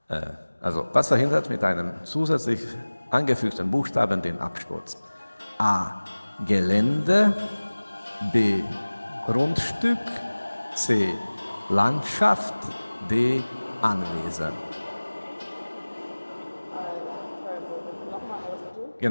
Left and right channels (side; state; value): both; inverted; correlation -1.00